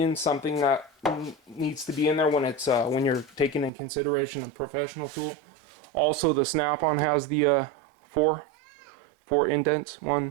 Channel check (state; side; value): drops out; left; at 3.7 s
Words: something that needs to be in there when it's when you're taking in consideration a professional tool. Also, the snap-on has the four indents.